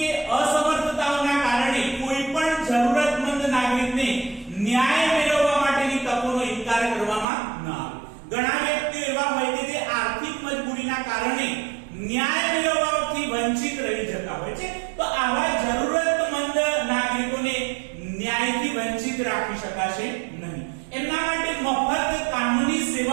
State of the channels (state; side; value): drops out; left; at 7.2 s